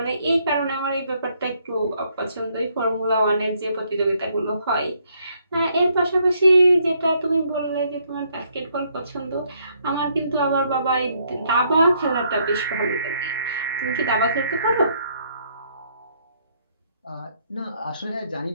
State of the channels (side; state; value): both; inverted; correlation -0.70